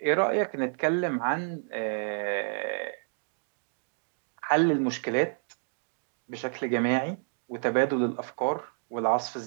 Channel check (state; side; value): silent; left; digital silence